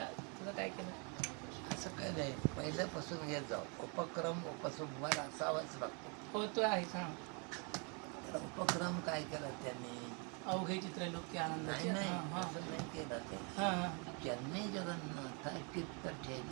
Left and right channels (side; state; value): left; quieter; 34.9 dB